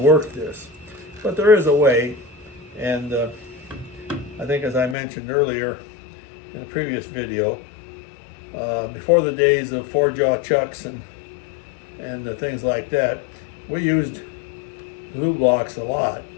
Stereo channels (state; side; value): drops out; right; at 5.0 s